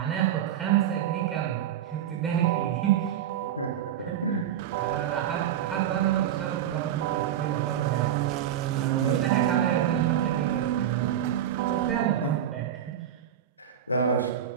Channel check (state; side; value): quieter; left; 10.2 dB